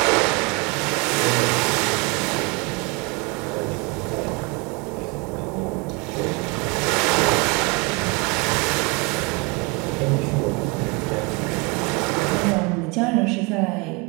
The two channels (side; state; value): left; quieter; 29.1 dB